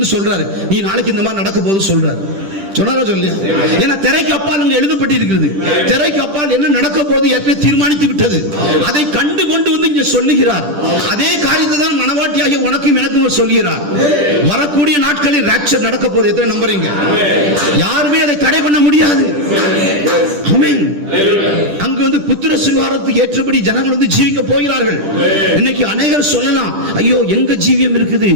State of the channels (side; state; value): left; late; 10 ms